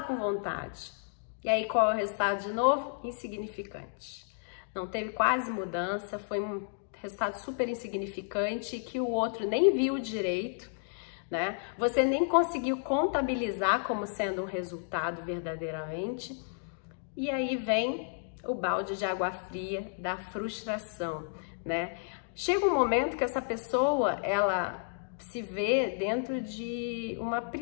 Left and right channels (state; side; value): silent; right; digital silence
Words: com vontade. E aí qual é o resultado de novo? Insignificante. Não teve quase mudança, foi um resultado super insignificante que o outro nem viu direito, né? Você nem conseguiu contabilizar como sendo um resultado verdadeiramente. E aí vem o balde de água fria da frustração, né? Chega um momento que essa pessoa, ela se vê dentro de uma